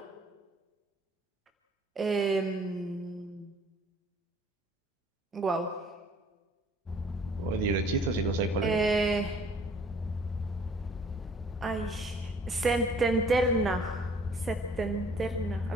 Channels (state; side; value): normal; both; correlation 0.56